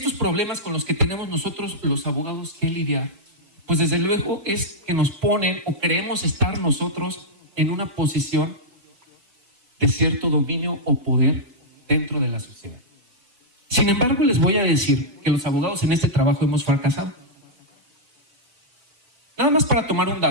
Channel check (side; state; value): left; late; 4.5 ms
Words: problemas con los que tenemos nosotros, los abogados, que lidiar, pues desde luego es que nos ponen o creemos estar nosotros en una posición de cierto dominio o poder dentro de la sociedad. Sin embargo, les voy a decir que los abogados en este trabajo hemos fracasado. Nada más para tomar un